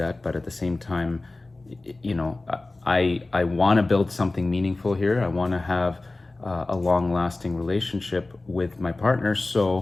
but at the same time, you know, I want to build something meaningful here. I want to have a long-lasting relationship with my partner.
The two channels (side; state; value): right; quieter; 3.1 dB